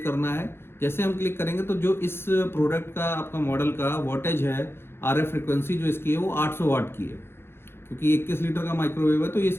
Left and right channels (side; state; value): right; late; 0.11 ms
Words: करना है। जैसे हम क्लिक करेंगे तो जो इस प्रोडक्ट का आपका मॉडल का वॉटेज है, RF फ्रिक्वेंसी जो इसकी है वो 800 वाट की है, क्योंकि 21 लीटर का माइक्रोवेव है तो